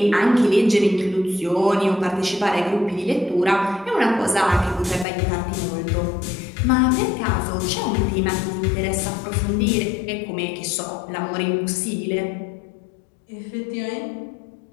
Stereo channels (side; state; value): right; drops out; at 5.1 s